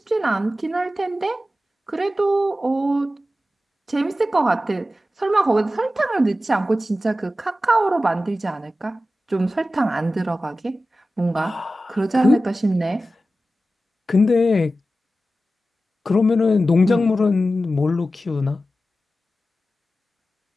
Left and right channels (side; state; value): both; normal; correlation 0.94